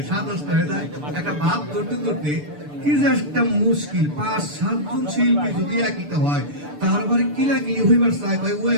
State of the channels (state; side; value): late; left; 6.8 ms